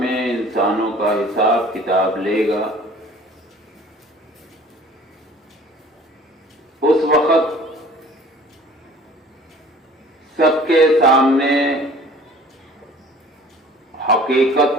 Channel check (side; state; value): both; normal; correlation 0.48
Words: انسانوں کا حساب کتاب لے گا، اس وقت سب کے سامنے